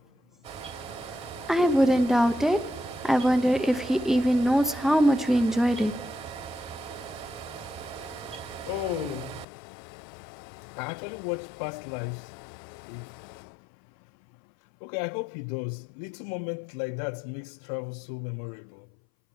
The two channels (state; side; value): drops out; right; at 9.5 s